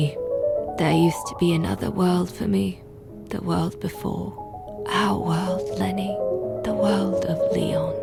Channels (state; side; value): identical; both; correlation 1.00